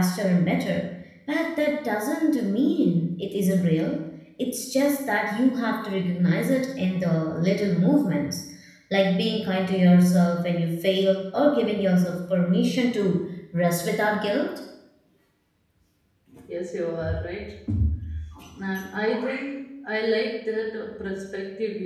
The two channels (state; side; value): identical; both; correlation 1.00